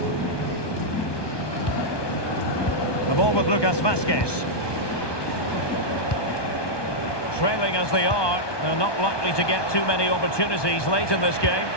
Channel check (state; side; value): late; right; 1.2 ms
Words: The ball with Lucas Vazquez. Trailing as they are, they're not likely to get too many opportunities late in this game,